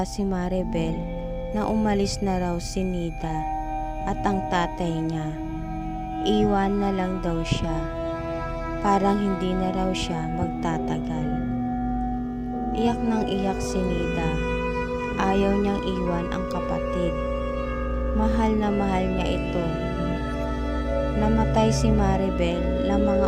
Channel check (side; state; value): both; identical; correlation 1.00